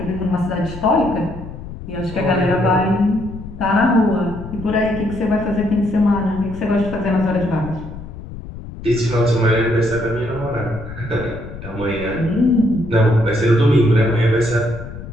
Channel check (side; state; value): left; noise; rumble, 12 dB below the sound